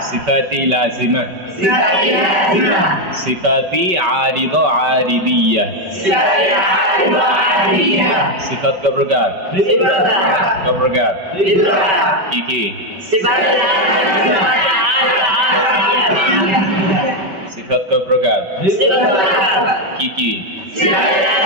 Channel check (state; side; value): late; left; 5.2 ms